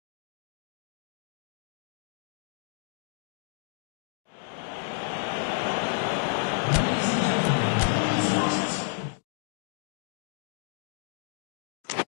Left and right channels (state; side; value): silent; right; 57 dB below the other